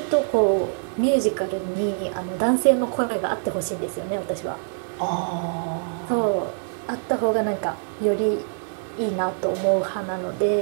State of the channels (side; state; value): left; silent; digital silence